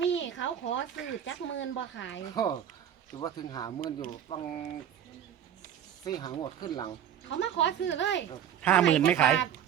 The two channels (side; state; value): left; quieter; 9.7 dB